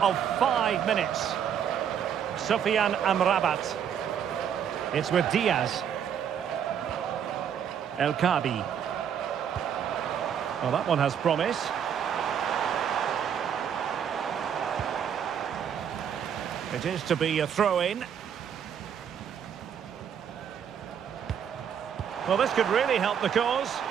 of 5 minutes. Sufyan Amrabat. It's with Diaz. El Khabi. Well, that one has promise. It is to be a throw-in. Well, this could really help the cause.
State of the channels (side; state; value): left; quieter; 8.4 dB